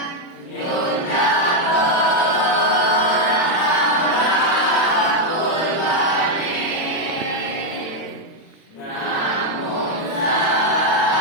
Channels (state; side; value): late; right; 36 ms